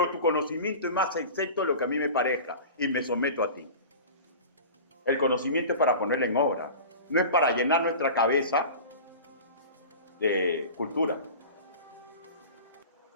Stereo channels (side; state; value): both; inverted; correlation -0.35